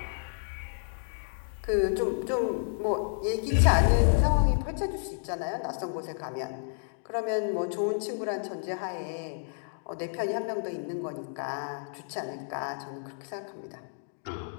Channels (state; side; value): silent; right; digital silence